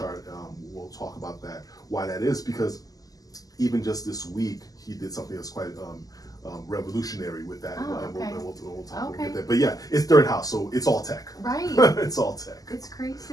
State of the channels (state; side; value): late; right; 0.17 ms